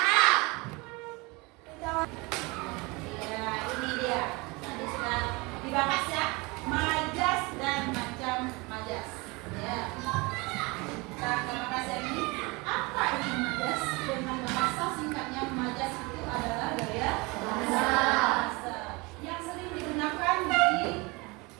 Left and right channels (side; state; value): left; quieter; 25.9 dB